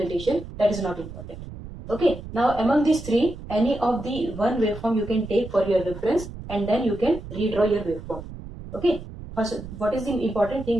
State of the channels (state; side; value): noise; right; rumble, 12 dB below the sound